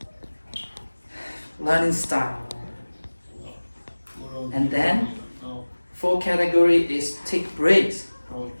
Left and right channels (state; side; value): inverted; both; correlation -1.00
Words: learning style. And then fourth category is take breaks. Our